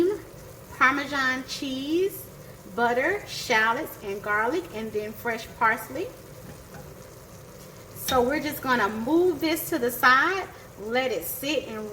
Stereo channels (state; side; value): identical; both; correlation 1.00